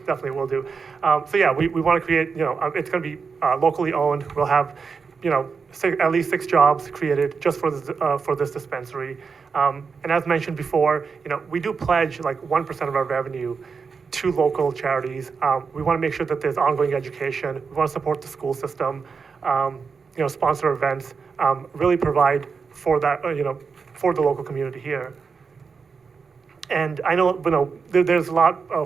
definitely will do. So yeah, we want to create, it's going to be locally owned. We'll have, at least 6 jobs created just for this dispensary. And as mentioned before, we do pledge like 1% of our revenue to local charities. We want to make sure that there's ongoing education. We want to support the school system, sponsor events, really provide for that, for the local community here. And I know, there's a lot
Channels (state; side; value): quieter; left; 5.4 dB